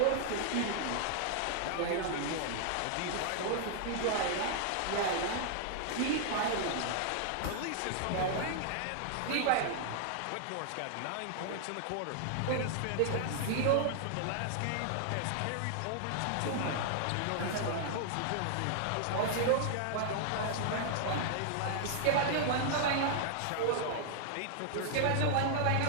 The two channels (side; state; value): both; different; correlation -0.01